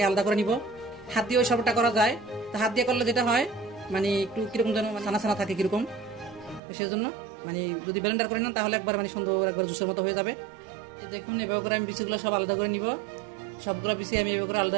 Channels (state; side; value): drops out; left; at 6.6 s